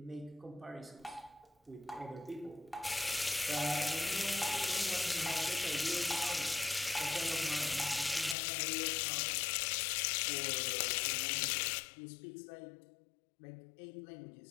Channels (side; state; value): right; drops out; at 8.3 s